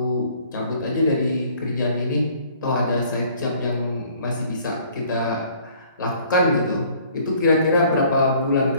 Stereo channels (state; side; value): inverted; both; correlation -0.57